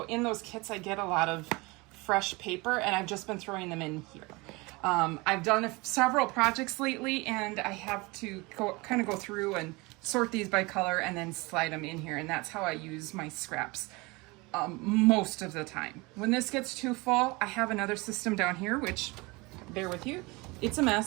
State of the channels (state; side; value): quieter; left; 24.8 dB